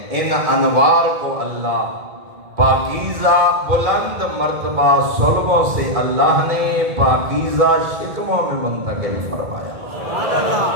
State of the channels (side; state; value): left; late; 2.4 ms